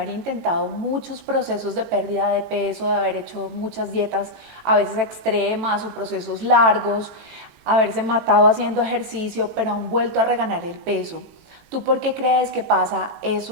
intentado muchos procesos de pérdida de peso, de haber hecho muchas dietas a veces extremas o procesos largos, haberse matado haciendo ejercicio, pero han vuelto a reganar el peso. ¿Tú por qué crees que pasa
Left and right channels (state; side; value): late; left; 20 ms